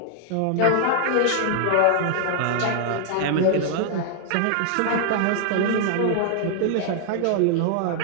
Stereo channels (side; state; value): both; different; correlation 0.00